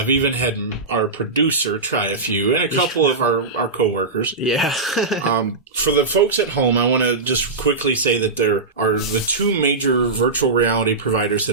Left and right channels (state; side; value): quieter; left; 3.8 dB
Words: even had our producer try a few, and a couple of our coworkers. Yeah. For the folks at home, I want to just quickly say that there are the two major virtual reality providers